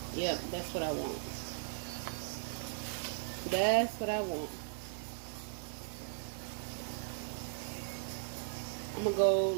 Yep, that's what I want. That's what I want. I'm gonna go,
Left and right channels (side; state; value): left; silent; digital silence